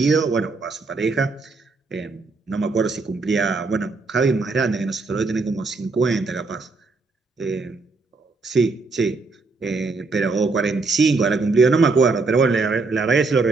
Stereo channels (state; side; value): quieter; left; 3.8 dB